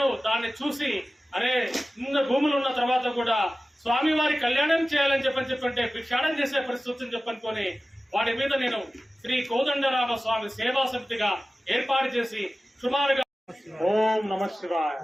దాన్ని చూసి అరే ఇన్న భూములు ఉన్న తర్వాత కూడా స్వామివారి కళ్యాణం చేయాలని చెప్పంటే భిక్షాటం చేసే పరిస్థితిని చెప్పనుకొని వాటి మీద నేను శ్రీ కోదండరామ స్వామి సేవా సమితిగా ఏర్పాటు చేసి సుమారుగా ఓం నమ శివాయ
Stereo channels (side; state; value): both; normal; correlation 0.96